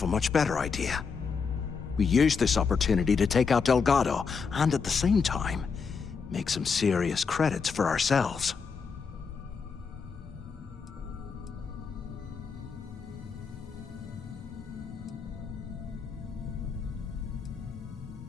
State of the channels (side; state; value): right; quieter; 5.5 dB